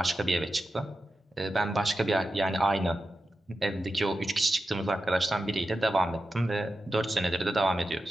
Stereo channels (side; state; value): both; normal; correlation 0.91